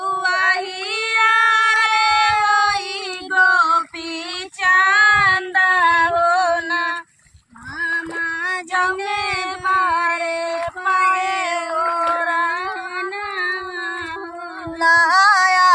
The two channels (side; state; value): both; identical; correlation 1.00